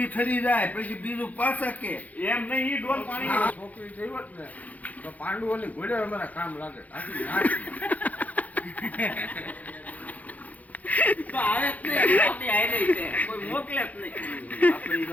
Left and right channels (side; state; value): right; late; 0.077 ms